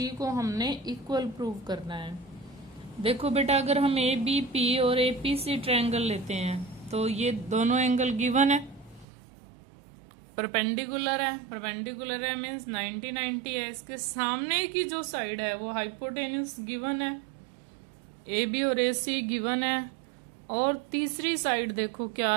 को हमने इक्वल प्रूव करना है। देखो बेटा अगर हम ABP और APC ट्रायंगल लेते हैं तो ये दोनों एंगल गिवन है, परपेंडिकुलर है मीन्स 90 है। इसके सामने की जो साइड है वो हाइपोटेन्यूस गिवन है, AB और AC गिवन है और तीसरी साइड देखो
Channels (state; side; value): drops out; left; at 9.1 s